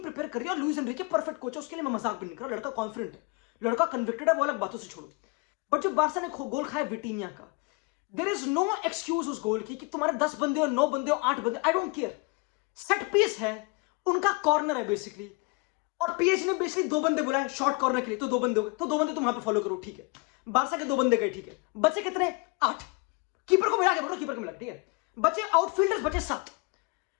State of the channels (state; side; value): quieter; right; 28.6 dB